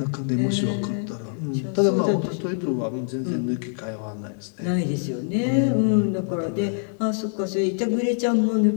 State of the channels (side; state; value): right; silent; digital silence